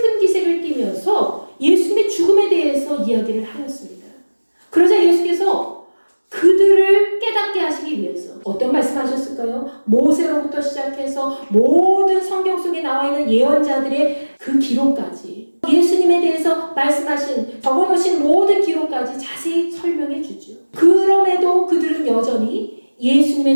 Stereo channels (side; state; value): both; inverted; correlation -1.00